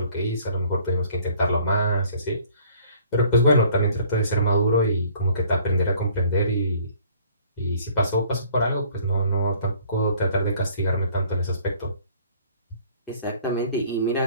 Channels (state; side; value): inverted; both; correlation -0.56